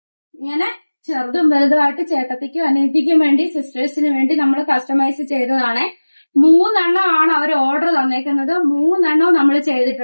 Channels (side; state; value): both; inverted; correlation -1.00